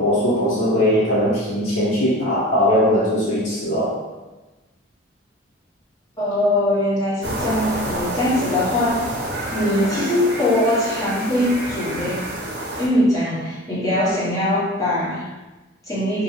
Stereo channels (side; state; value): both; normal; correlation 0.37